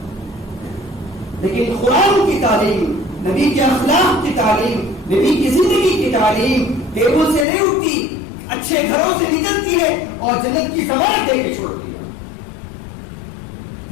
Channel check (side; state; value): right; drops out; at 7.5 s